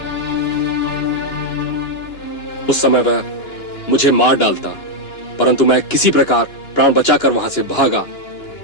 उस समय वह मुझे मार डालता, परंतु मैं किसी प्रकार प्राण बचाकर वहां से भागा।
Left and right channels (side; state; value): right; late; 2.9 ms